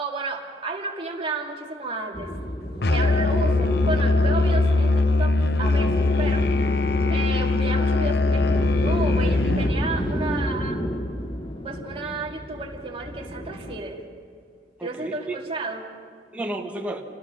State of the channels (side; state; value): both; normal; correlation 0.74